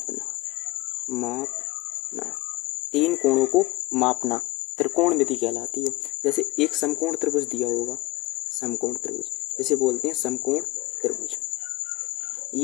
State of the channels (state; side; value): quieter; right; 21.5 dB